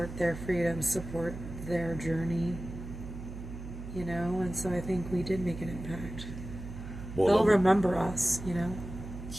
their freedom, support their journey, and so I think we did make an impact. Well, they'll remember us,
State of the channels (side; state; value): right; noise; hum, 10 dB below the sound